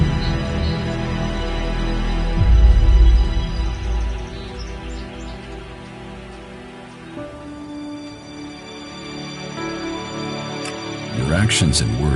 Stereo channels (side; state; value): both; identical; correlation 1.00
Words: Your actions and